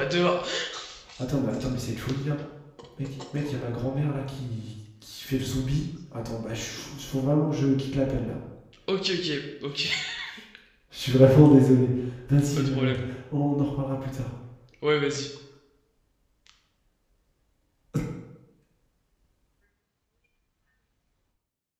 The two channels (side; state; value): both; identical; correlation 1.00